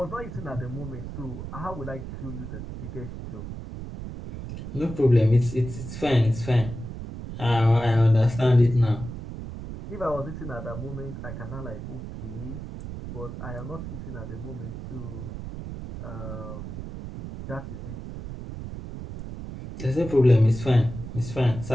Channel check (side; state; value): right; noise; rumble, 9 dB below the sound